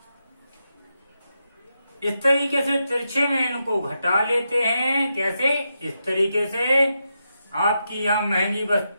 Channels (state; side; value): inverted; both; correlation -0.85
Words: इस तरीके से तिरछे में इनको घटा लेते हैं। कैसे? इस तरीके से आपकी यहाँ महंगी